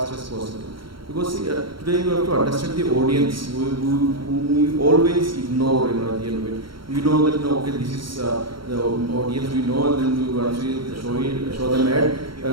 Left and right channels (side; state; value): left; late; 0.73 ms